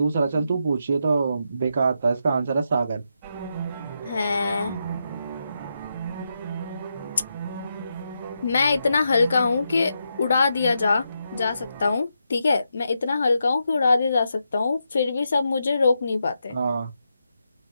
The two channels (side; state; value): both; inverted; correlation -0.84